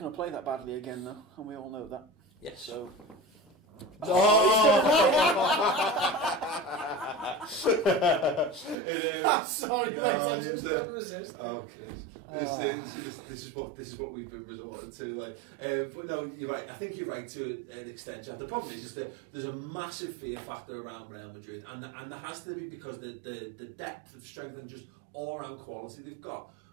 to play that badly again, though, and we all know that. Yes. So... Sorry, mate, I just couldn't resist. Oh, Chris. This is what we've been resorting to. Like, but no, you're right. I think you're right to an extent, Jack. The problem is that there's a massive fear factor around Real Madrid, and there has to be, because the depth of strength and just all round quality they've got.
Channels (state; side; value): drops out; left; at 8.8 s